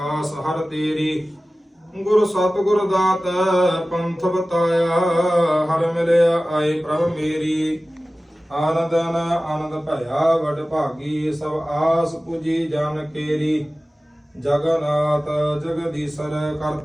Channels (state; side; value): normal; both; correlation 0.96